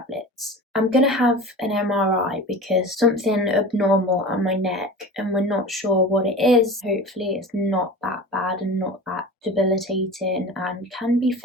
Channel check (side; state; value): both; normal; correlation 0.34